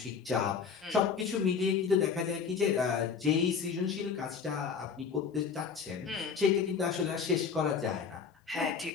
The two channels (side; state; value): right; quieter; 6.2 dB